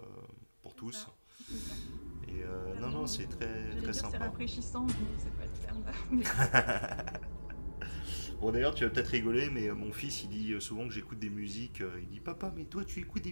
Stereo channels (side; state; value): both; inverted; correlation -1.00